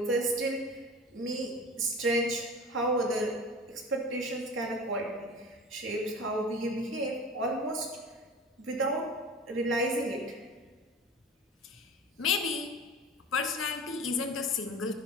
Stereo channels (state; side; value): normal; both; correlation 0.36